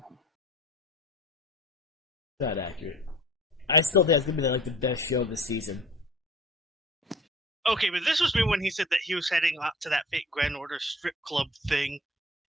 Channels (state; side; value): normal; both; correlation 0.45